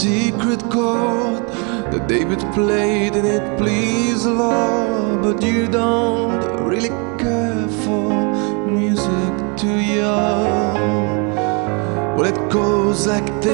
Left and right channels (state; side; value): quieter; left; 33.7 dB